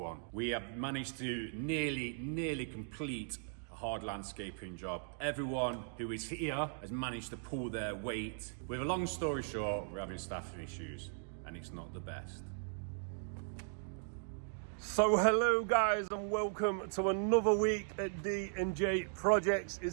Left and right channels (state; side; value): silent; left; digital silence